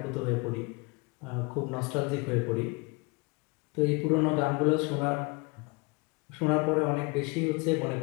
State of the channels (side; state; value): right; quieter; 28.4 dB